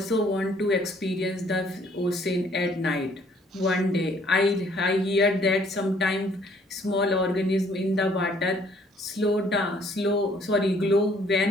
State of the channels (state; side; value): normal; both; correlation 0.62